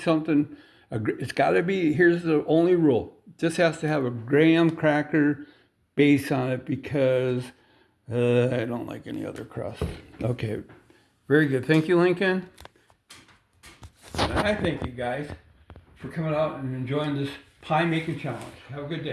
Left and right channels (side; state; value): both; identical; correlation 1.00